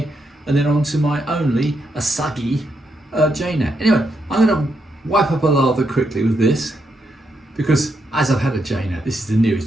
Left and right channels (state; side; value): normal; both; correlation 0.81